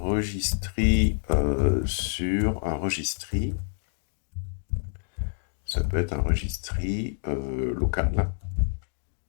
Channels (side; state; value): right; silent; digital silence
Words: sur un registry. Ça peut être un registry local.